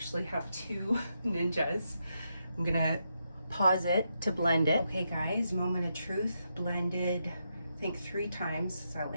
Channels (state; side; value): inverted; both; correlation -0.83